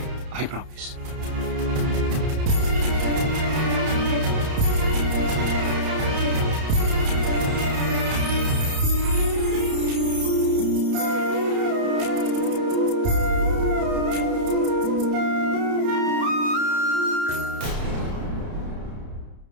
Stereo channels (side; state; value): left; late; 31 ms